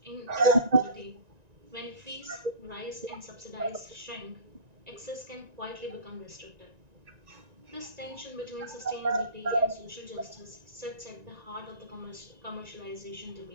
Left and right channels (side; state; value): left; late; 1.9 ms